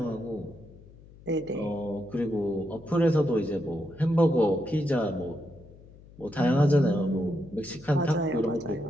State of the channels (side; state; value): left; noise; hum, 22 dB below the sound